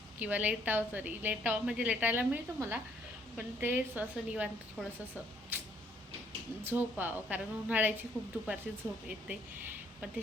किंवा लेटावं. तरी लेटावं म्हणजे लेटायला मिळतं मला, पण ते असं निवांत थोडंसं असं झोपावं, कारण उन्हाळ्याची खूप दुपारची झोप येते. पण ते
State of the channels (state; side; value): normal; both; correlation 0.66